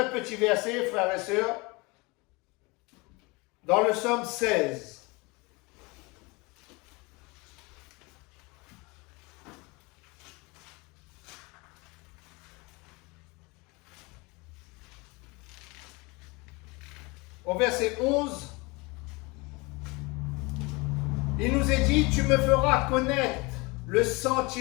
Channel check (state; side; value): quieter; right; 26.0 dB